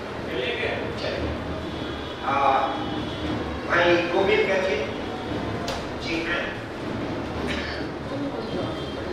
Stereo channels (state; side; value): identical; both; correlation 1.00